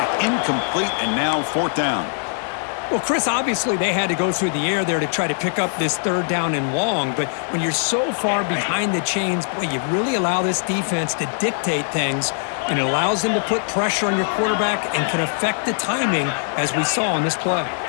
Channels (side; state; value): right; silent; digital silence